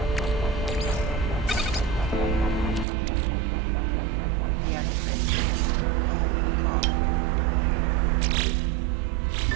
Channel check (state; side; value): drops out; left; at 2.9 s